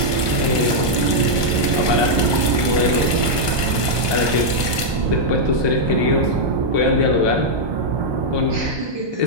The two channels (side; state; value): left; late; 1.2 ms